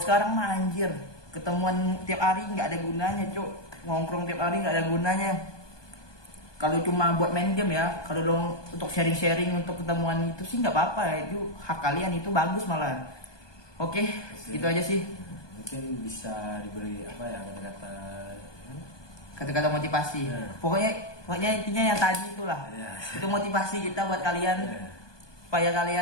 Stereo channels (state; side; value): late; right; 1.2 ms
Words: mah anjir, ketemuan tiap hari nggak ada gunanya, cuk. Ngongkrong tiap hari nggak ada gunanya. Kalau cuma buat main game ya, kalau lo untuk sharing-sharing untuk ketemuan itu sih nggak apa-apa ya, itu hak kalian, itu bagus malah. Oke, itu aja sih. Mungkin bisa diberi Kata-kata motivasi. Pokoknya intinya yang tadi itulah. Itu motivasi kita buat kalian supaya